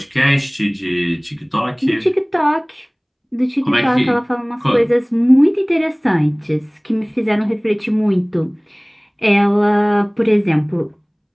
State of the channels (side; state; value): both; identical; correlation 1.00